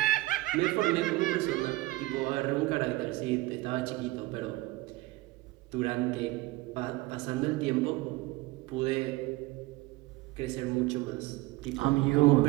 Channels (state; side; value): quieter; left; 19.6 dB